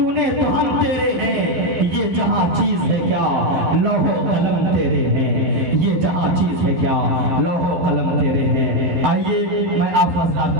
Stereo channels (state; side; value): late; left; 12 ms